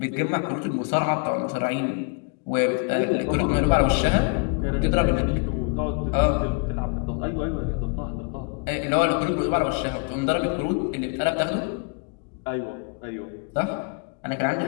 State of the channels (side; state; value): right; quieter; 34.7 dB